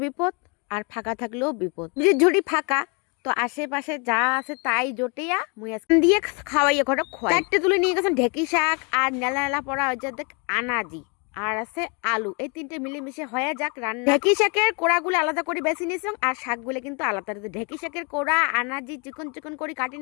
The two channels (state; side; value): quieter; right; 32.8 dB